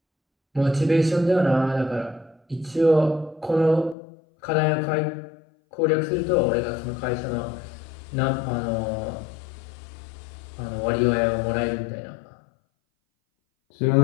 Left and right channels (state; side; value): drops out; right; at 4.0 s